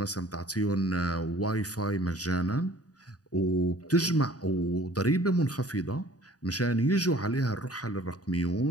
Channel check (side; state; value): right; late; 0.68 ms